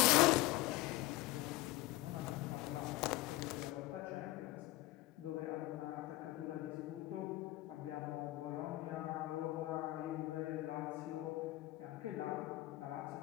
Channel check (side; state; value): right; quieter; 18.6 dB